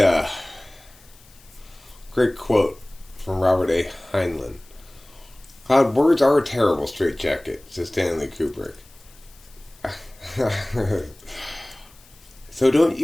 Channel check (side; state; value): left; noise; hiss, 26 dB below the sound